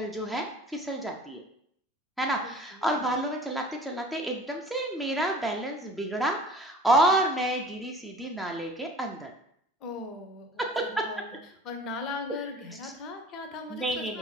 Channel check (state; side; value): normal; both; correlation 0.45